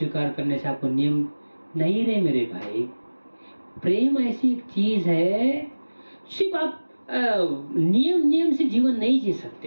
करने से आपको नियम नहीं रहे? मेरे भाई, प्रेम ऐसी एक चीज है, सिर्फ आप नियम से जीवन नहीं जी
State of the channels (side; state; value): both; inverted; correlation -1.00